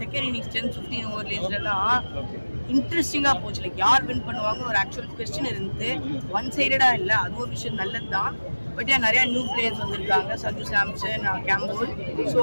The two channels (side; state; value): both; inverted; correlation -1.00